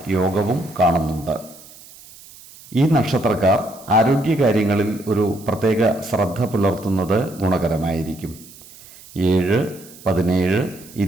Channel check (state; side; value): noise; right; hiss, 21 dB below the sound